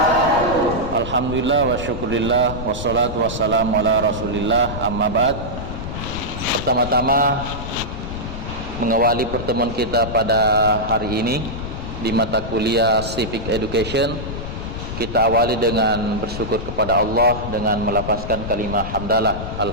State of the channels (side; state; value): left; noise; rumble, 7 dB below the sound